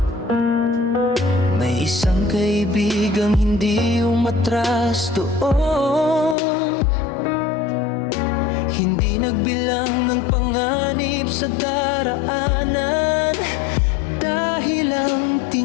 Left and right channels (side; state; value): right; drops out; at 6.4 s